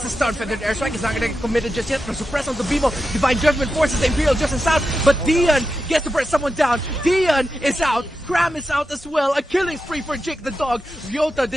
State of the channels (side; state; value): both; normal; correlation 0.89